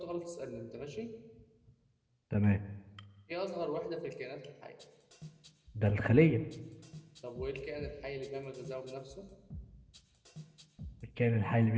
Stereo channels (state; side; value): identical; both; correlation 1.00